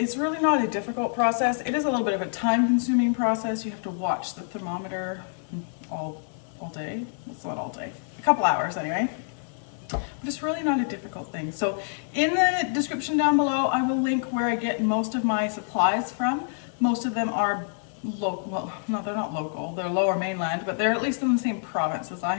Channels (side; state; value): right; silent; digital silence